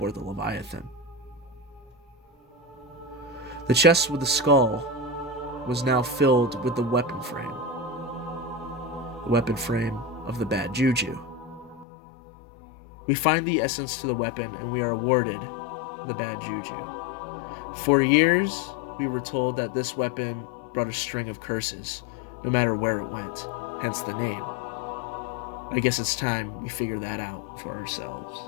the Leviathan. The chest with the skull was now filled with the weapon frame of the bad Juju. We find the essence to the weapon, and we are awarded the bad Juju. For years, we were told that this weapon brought a string of curses, no matter where it went, hence the name. I guess it's time we figure that out for ourselves.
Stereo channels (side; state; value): right; drops out; at 11.9 s